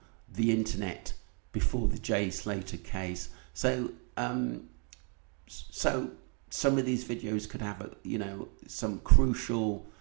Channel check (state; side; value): quieter; left; 38.1 dB